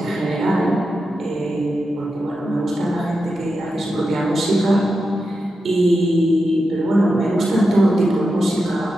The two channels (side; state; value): both; normal; correlation 0.89